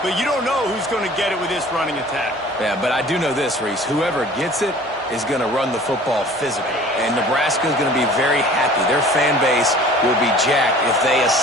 But you don't know who's going to get it with this running attack. Yeah, but I do know this, Reese. Whoever gets it is going to run the football physically. And Nebraska is going to be very happy. Their fan base will be jacked if they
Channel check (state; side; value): normal; both; correlation 0.47